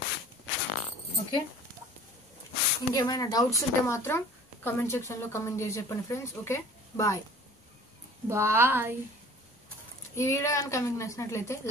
ఓకే, ఇంకేమైనా డౌట్స్ ఉంటే మాత్రం కమెంట్ సెక్షన్లో కమెంట్ చేసి చెప్పండి ఫ్రెండ్స్. Okay, bye bye. ఈ వీడియో కనుక మీకు నచ్చినట్లయితే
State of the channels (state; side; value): normal; both; correlation 0.46